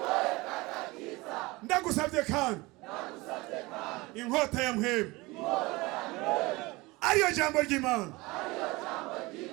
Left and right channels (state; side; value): quieter; left; 22.5 dB